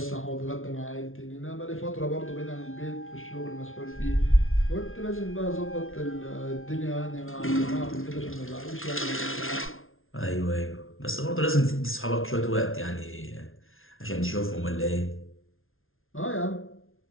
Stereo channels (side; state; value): right; late; 0.60 ms